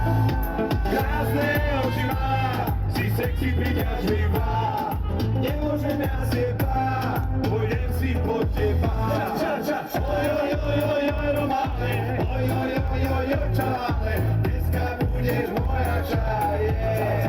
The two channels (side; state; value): both; identical; correlation 1.00